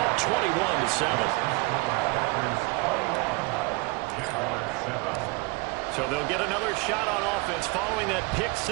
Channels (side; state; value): left; quieter; 25.9 dB